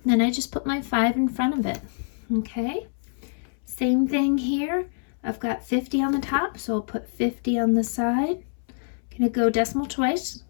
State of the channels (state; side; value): silent; right; 61 dB below the other